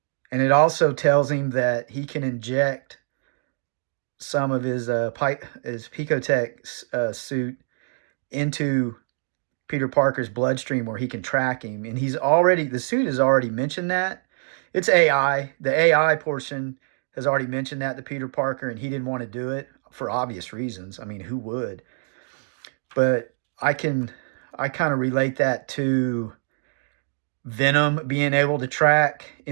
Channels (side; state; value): left; silent; digital silence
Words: And it also tells him that he can inject some of his Picotech suit into Peter Parker's bloodstream where he can track him. And the suit has already mentioned that. It's AI. The AI portion has already mentioned that to Peter Parker, and he didn't want to do it for obvious reasons. I mean, who would? But I kind of relate that to Venom being able to track